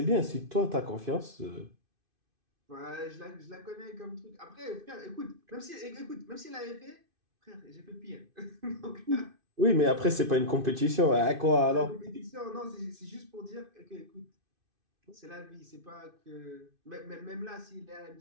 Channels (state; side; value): late; left; 2.5 ms